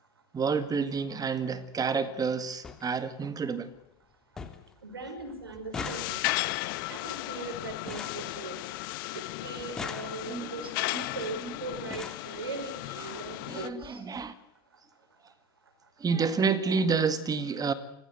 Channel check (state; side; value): normal; both; correlation 0.36